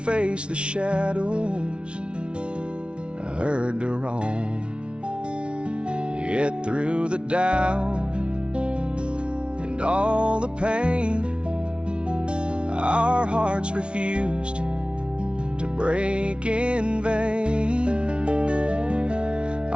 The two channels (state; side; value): late; left; 0.058 ms